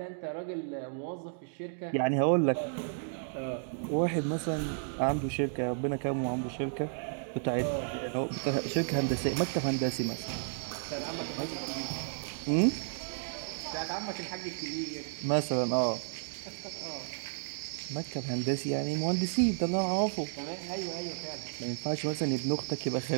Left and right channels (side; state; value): left; silent; digital silence